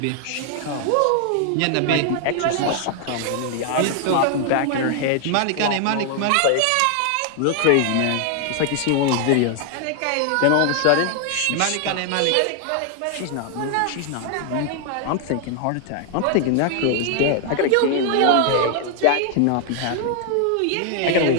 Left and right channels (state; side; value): different; both; correlation 0.00